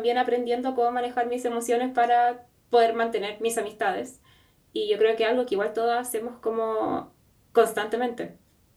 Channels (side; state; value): both; identical; correlation 1.00